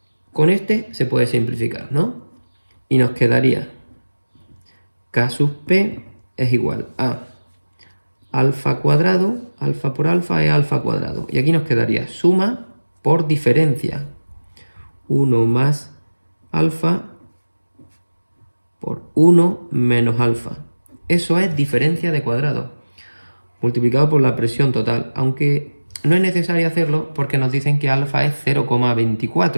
Con este se puede simplificar, ¿no? Y nos quedaría K sub P es igual a alfa cuadrado, alfa por alfa es alfa cuadrado. Y aquí nos quedaría suma por diferencia. 1 más alfa por 1 menos alfa. Eso es diferencia de cuadrado, multiplicado por la presión total. Aunque no es necesario hacerlo porque nos dicen que alfa es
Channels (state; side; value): inverted; both; correlation -1.00